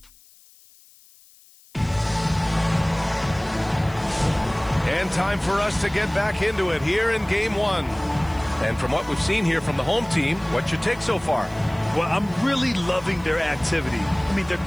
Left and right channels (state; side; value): noise; left; hiss, 27 dB below the sound